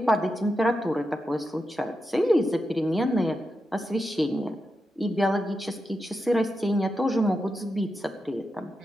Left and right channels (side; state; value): both; normal; correlation 0.88